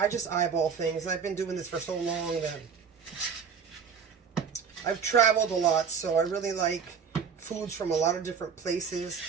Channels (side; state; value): left; quieter; 6.5 dB